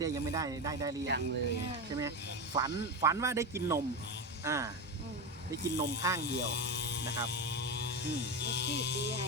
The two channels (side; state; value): both; normal; correlation 0.17